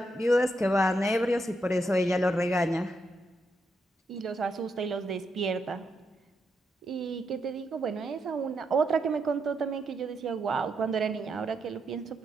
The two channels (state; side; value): normal; both; correlation 0.82